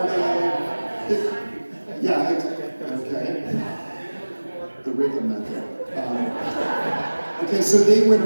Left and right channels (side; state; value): both; inverted; correlation -1.00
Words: of. Yeah, okay. The rhythm method. Okay, so they win